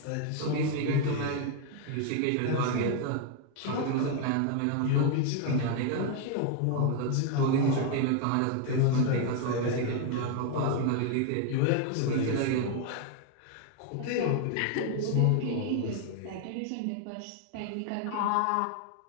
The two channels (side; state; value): both; different; correlation 0.00